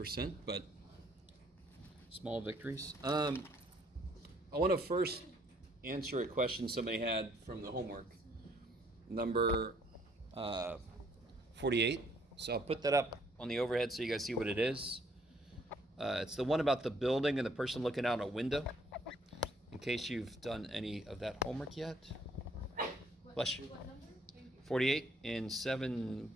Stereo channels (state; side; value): normal; both; correlation 0.64